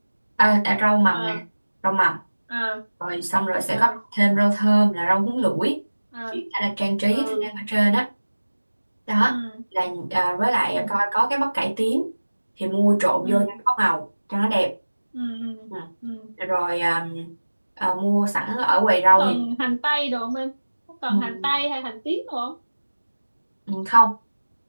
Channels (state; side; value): inverted; both; correlation -1.00